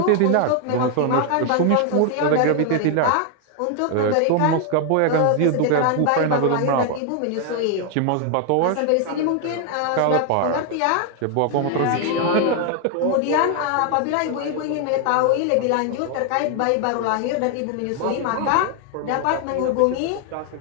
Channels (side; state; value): both; different; correlation 0.00